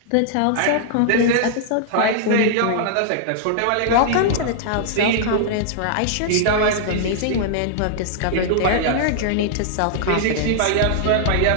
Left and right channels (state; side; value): different; both; correlation -0.01